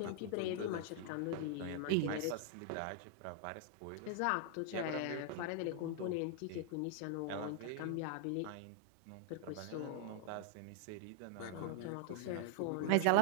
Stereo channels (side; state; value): both; different; correlation 0.00